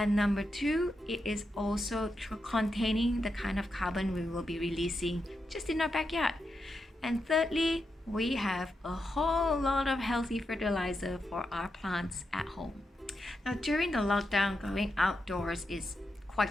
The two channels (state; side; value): normal; both; correlation 0.86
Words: number two, it is also containing the kind of carbon we will be releasing just in our backyard. And thirdly, we have a whole lot of healthy fertilizer for our plants at home. Now, during the lockdown, going outdoors is